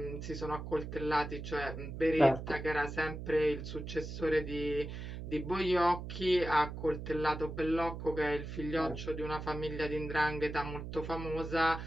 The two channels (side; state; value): right; noise; hum, 8 dB below the sound